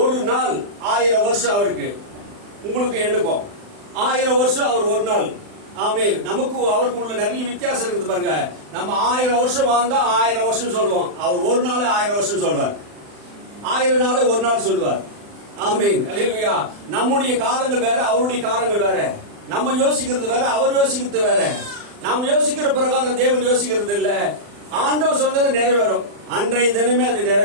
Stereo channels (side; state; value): left; late; 40 ms